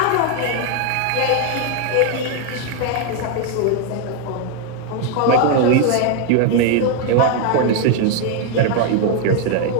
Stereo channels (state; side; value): different; both; correlation 0.01